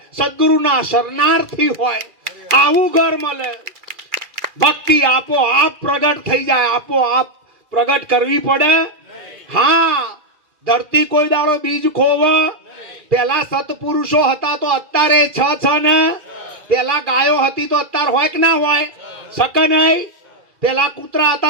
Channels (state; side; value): late; left; 2.3 ms